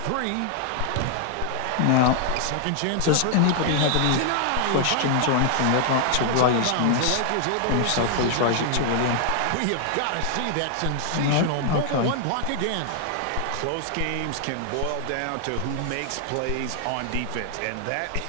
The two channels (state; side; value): different; both; correlation 0.00